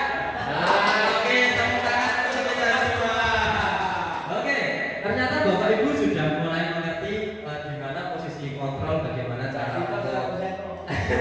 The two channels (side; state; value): both; identical; correlation 1.00